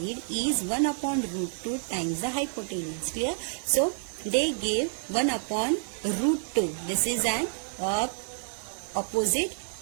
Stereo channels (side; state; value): left; silent; 59 dB below the other